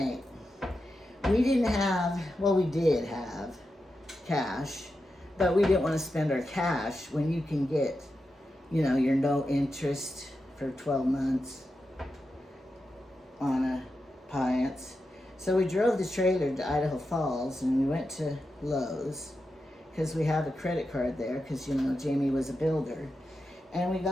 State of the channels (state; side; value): normal; both; correlation 0.89